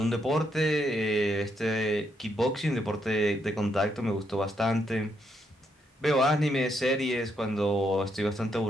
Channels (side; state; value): both; normal; correlation 0.77